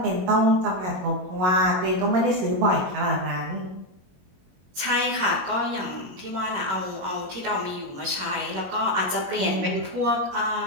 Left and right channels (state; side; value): late; left; 22 ms